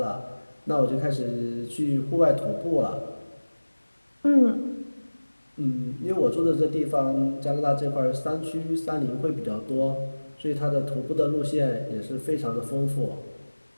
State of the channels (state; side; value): inverted; both; correlation -1.00